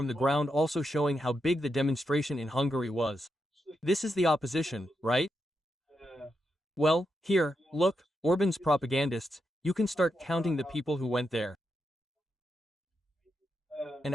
the ground also showing how big the demonstration in Hungary was. This is the opposition, right? Well, here, look, Orban's propagandists, you can start counting the people who went there. An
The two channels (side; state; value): both; normal; correlation 0.84